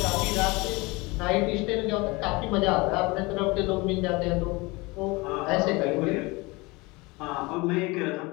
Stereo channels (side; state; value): right; quieter; 24.5 dB